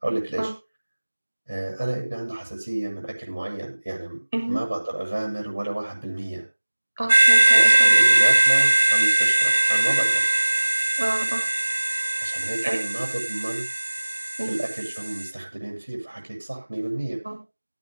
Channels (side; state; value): both; inverted; correlation -1.00